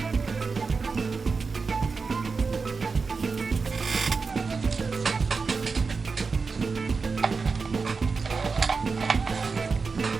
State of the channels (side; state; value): left; quieter; 4.7 dB